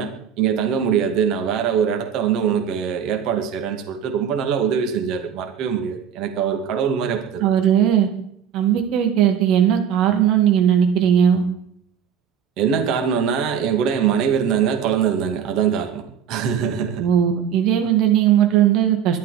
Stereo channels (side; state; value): left; quieter; 8.4 dB